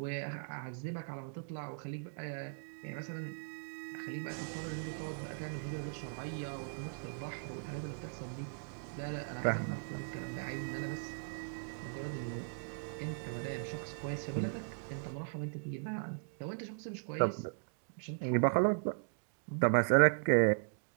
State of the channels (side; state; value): left; silent; digital silence